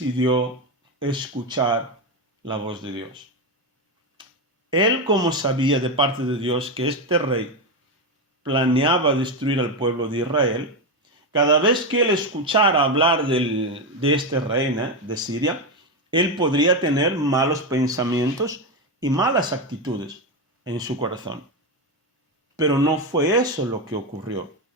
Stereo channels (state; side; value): normal; both; correlation 0.11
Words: escuchar la voz de Dios. Él, como sabía de parte de Dios que este rey planeaba destruir al pueblo de Israel, cada vez que él escuchara hablar de este rey de Siria, él podría tener malos pensamientos y malas actitudes en su corazón. Pero no fue eso lo que ocurrió.